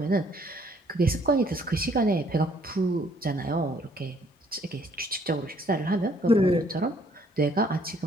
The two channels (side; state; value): both; normal; correlation 0.64